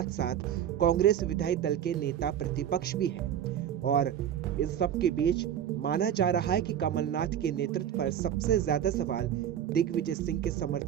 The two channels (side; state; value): left; quieter; 9.9 dB